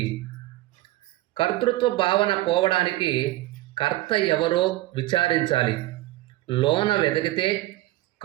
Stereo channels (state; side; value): quieter; left; 17.0 dB